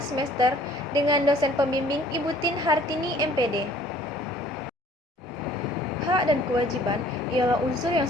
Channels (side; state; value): both; normal; correlation 0.55